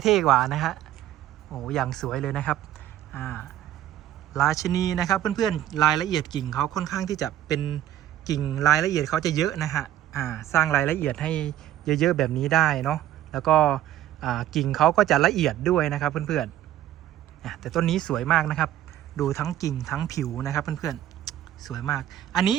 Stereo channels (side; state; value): left; quieter; 12.4 dB